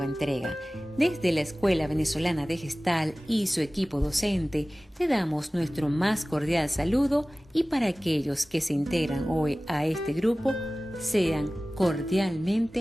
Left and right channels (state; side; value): normal; both; correlation 0.97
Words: entrega. Desde la Escuela Venezolana de Gestalt y su equipo docente te damos nuestro más cordial saludo y para aquellos que se integran hoy a este grupo, sean